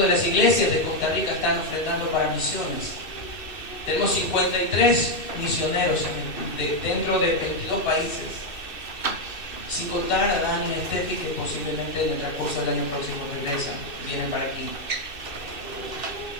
las iglesias de Costa Rica están ofrendando para misiones. Tenemos 53 misioneros dentro de 22 países. Sin contar a Dani y Steffi, que posiblemente en el transcurso del año próximo regresan, vienen para aquí.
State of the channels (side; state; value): right; late; 2.6 ms